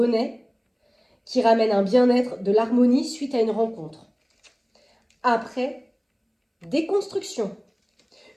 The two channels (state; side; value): identical; both; correlation 1.00